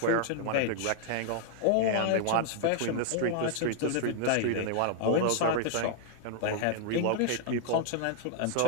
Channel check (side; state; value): both; different; correlation -0.01